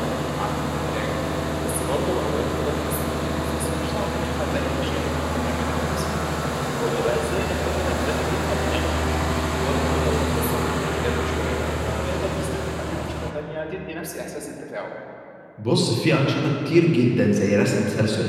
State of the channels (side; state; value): both; identical; correlation 1.00